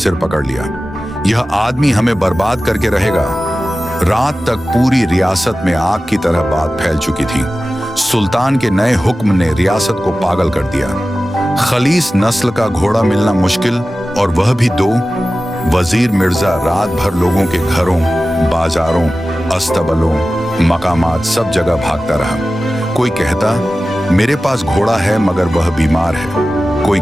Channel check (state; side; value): normal; both; correlation 0.95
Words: पकड़ लिया। यह आदमी हमें बर्बाद करके रहेगा। रात तक पूरी रियासत में आग की तरह बात फैल चुकी थी। सुल्तान के नए हुक्म ने रियासत को पागल कर दिया। खलीस नस्ल का घोड़ा मिलना मुश्किल, और वह भी 2। वजीर मिर्जा रात भर लोगों के घरों, बाजारों, अस्तबलों, मकामात सब जगह भागता रहा। कोई कहता, मेरे पास घोड़ा है मगर वह बीमार है। कोई